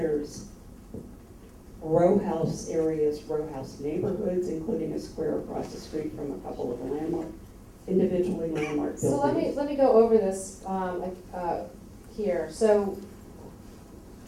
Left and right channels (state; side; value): identical; both; correlation 1.00